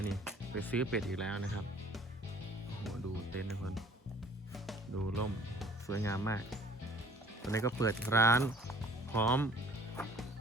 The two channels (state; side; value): normal; both; correlation 0.53